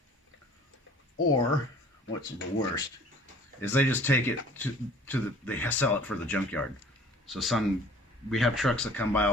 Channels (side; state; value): both; normal; correlation 0.50